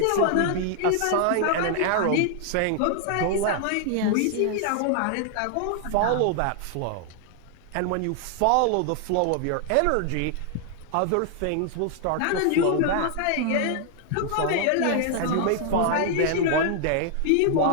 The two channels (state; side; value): different; both; correlation 0.00